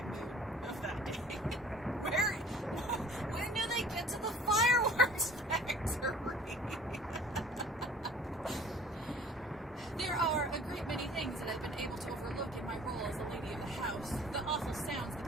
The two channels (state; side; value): normal; both; correlation 0.50